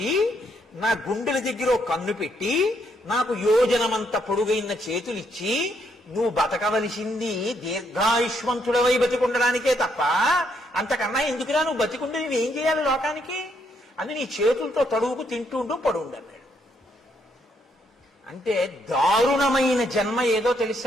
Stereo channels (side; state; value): both; normal; correlation 0.74